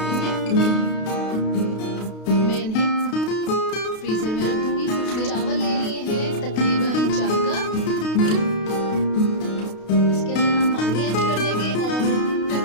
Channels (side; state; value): right; late; 32 ms